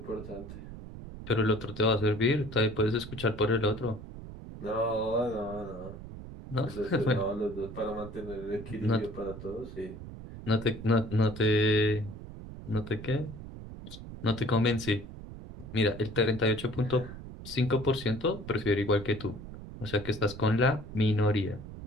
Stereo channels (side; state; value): right; noise; rumble, 12 dB below the sound